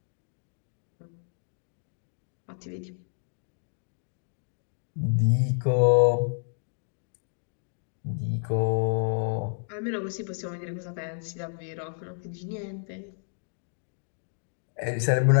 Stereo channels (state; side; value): silent; right; digital silence